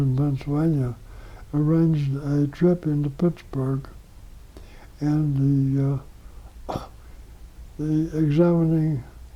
Pennsylvania, arranged a trip into Pittsburgh, and the examining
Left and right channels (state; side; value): identical; both; correlation 1.00